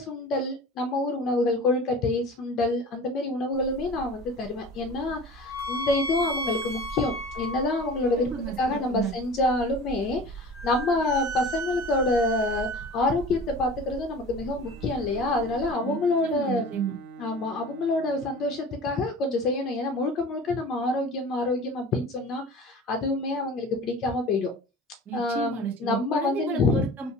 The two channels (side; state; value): both; normal; correlation 0.39